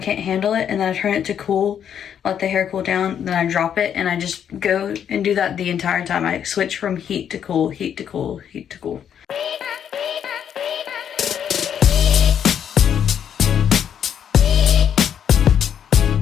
handle it, and then I turn it to cool, let the hair cool down, then I drop it, and I just go and do that the entire time. I switch from heat to cool, heat to cool, heat to cool.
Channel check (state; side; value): quieter; right; 8.8 dB